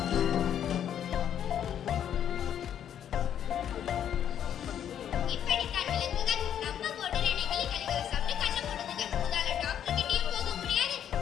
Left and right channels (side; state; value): right; quieter; 9.6 dB